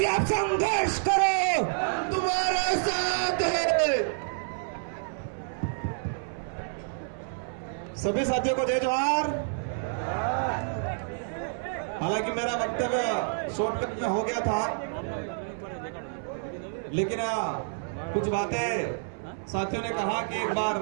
से आप संघर्ष करो, तुम्हारा साथ है। सभी साथियों को जय जोहार। हालांकि मेरा वक्तव्य शॉर्टकट में हो गया था, लेकिन कुछ बातें साथियों ने कहा कि एक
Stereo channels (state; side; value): silent; left; 59 dB below the other